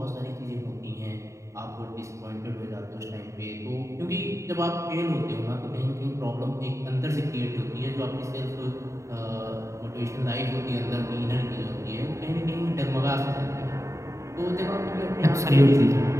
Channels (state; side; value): late; left; 0.14 ms